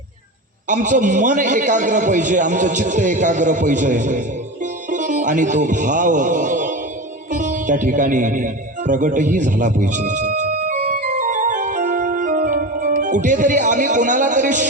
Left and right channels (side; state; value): both; normal; correlation 0.25